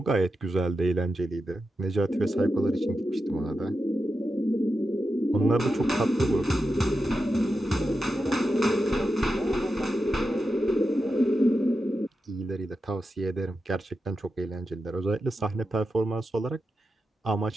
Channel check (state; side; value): normal; both; correlation 0.89